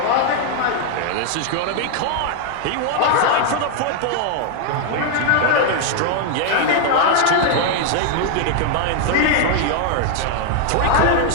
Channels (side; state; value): both; different; correlation 0.00